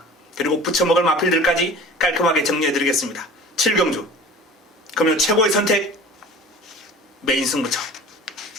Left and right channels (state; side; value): normal; both; correlation 0.41